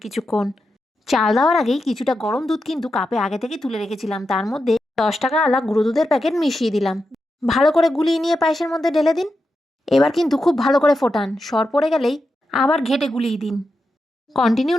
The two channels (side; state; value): both; normal; correlation 0.88